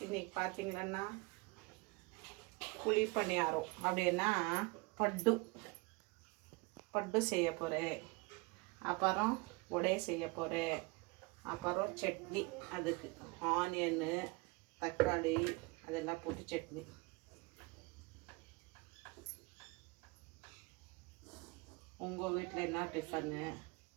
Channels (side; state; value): left; quieter; 26.1 dB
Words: இன்றைக்கி பார்த்தீங்கன்னா குழி பணியாரம் அப்படின்னா பட்டு பட்டு செய்ய போகிறேன். அப்புறம் உடை செய்ய போகிறேன். அப்புறம் சட்னி, அதுக்கு ஆனியனு தக்காளி அதெல்லாம் போட்டு சட்னி. உங்கள் வீட்டில் என்ன டிஃபனு?